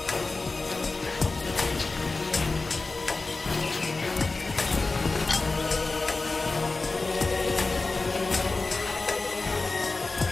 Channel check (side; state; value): right; quieter; 3.6 dB